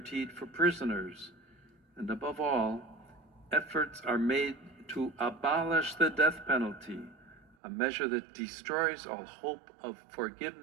for prisoners, and above all, efforts are made to abolish the death penalty, a measure that destroys all hope of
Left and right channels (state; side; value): drops out; left; at 7.6 s